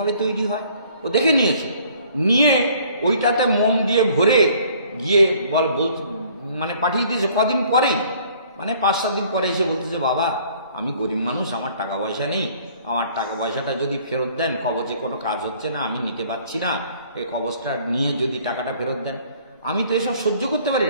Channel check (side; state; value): both; inverted; correlation -0.57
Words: তৈরি হয়, ও দেখে নিয়েছে, নিয়ে ওইটাতে মোম দিয়ে ভরে গিয়ে মানে পাঠিয়ে দিয়েছে। কদিন পরেই মানে 5-7 দিন পরে এসে বলতেছে, বাবা আমি গরিব মানুষ, আমার টাকা পয়সা নেই, আমার টাকা পয়সাটা যদি ফেরত দেন, কবচে কোনো কাজ হচ্ছে না, আমি নিতে পারছি না, এই কবচটা নিয়ে যদি টাকাটা ফেরত দেন। আমি তো এসব সহ্য করতে পারি